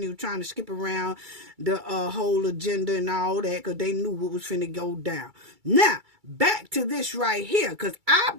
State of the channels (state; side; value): late; left; 2.3 ms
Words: was trying to skip around the whole agenda and all that, because they knew what was finna go down. Now, back to this right here, because I